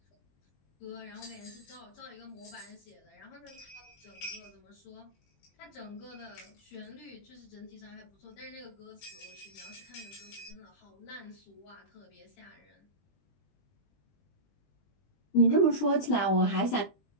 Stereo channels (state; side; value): late; right; 20 ms